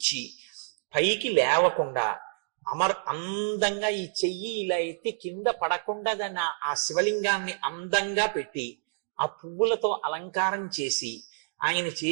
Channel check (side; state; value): left; silent; digital silence